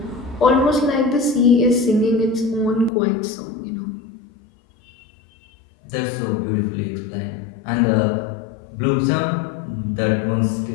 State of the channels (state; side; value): drops out; right; at 2.9 s